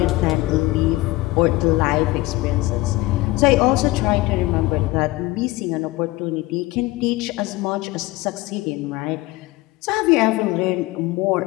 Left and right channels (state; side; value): quieter; right; 19.5 dB